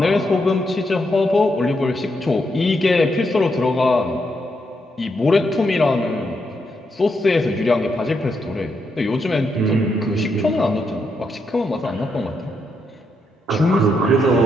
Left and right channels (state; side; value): normal; both; correlation 0.80